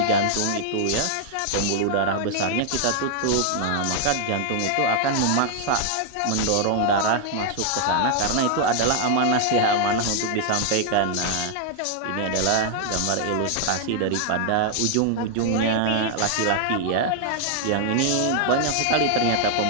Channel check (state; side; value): different; both; correlation 0.00